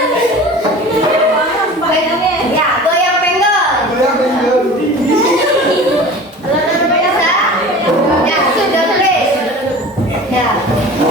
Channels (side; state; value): both; normal; correlation 0.38